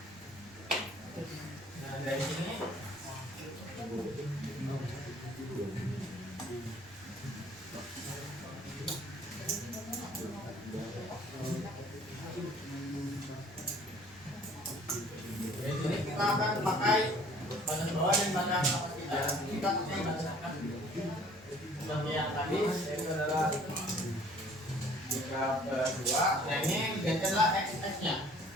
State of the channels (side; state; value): right; noise; rumble, 25 dB below the sound